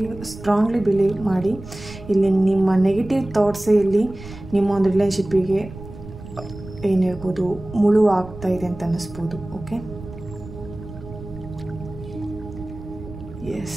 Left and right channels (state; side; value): noise; right; rumble, 14 dB below the sound